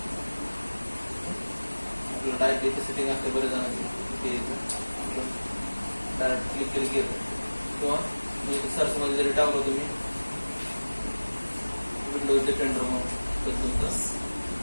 आपल्याला डायरेक्ट इथे सेटिंग असते बरेच जणांची, डायरेक्ट क्लिक केली की किंवा सर्च मध्ये जरी टाकलं तुम्ही विंडोज डिफेंडर म्हणून तर तुमचं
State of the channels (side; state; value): both; inverted; correlation -1.00